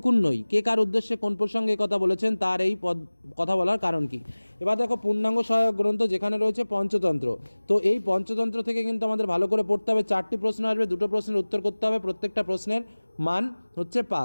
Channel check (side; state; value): both; inverted; correlation -1.00